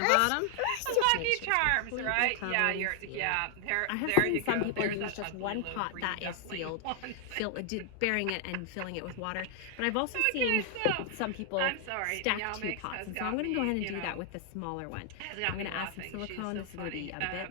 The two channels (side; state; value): both; different; correlation 0.00